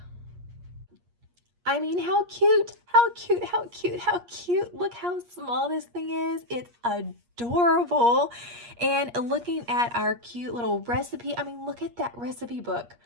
I mean, how cute, how cute, how cute, how cute. Look how small this thing is. It's adorable. And looking at our cute little recipe, I mean, look at that recipe book.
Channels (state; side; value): late; left; 8.5 ms